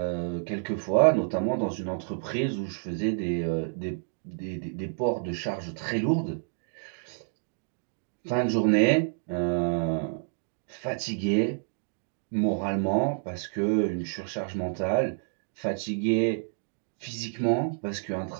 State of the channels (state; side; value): silent; left; digital silence